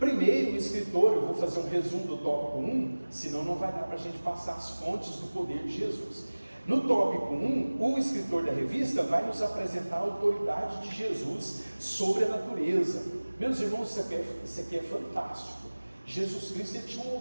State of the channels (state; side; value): inverted; both; correlation -1.00